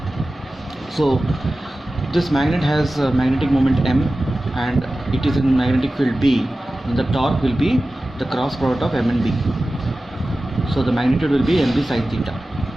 So this magnet has a magnetic moment M and it is in magnetic field B, and the torque will be the cross product of M and B. So the magnitude will be MB sin theta.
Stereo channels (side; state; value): both; normal; correlation 0.95